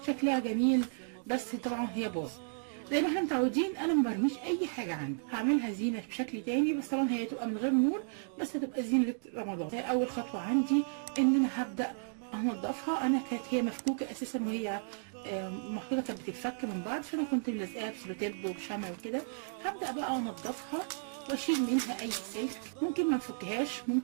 شكلها جميل، بس طبعا هي باظ. زي ما احنا متعودين انا ما برميش اي حاجه عندي، هعملها زينه بشكل تاني، بس طبعا هي تبقى من غير نور، بس هتبقى زينه رمضان. اول خطوه عندي ان انا هبدا انضفها. انا كانت هي مفكوكه اساسا، وهي محطوطه كانت بتتفك من بعض، فانا كنت ملزقاها بسلوتيب وبشمع وكده. هبدا بقى انضفها واشيل منها اي سلك، ممكن ما نفكهاش،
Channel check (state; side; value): silent; left; digital silence